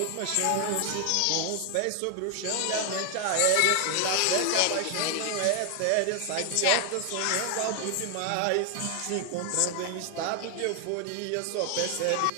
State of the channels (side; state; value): both; different; correlation 0.00